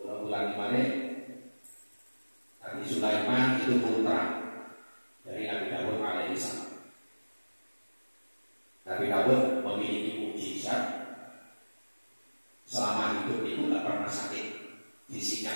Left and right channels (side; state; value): both; inverted; correlation -1.00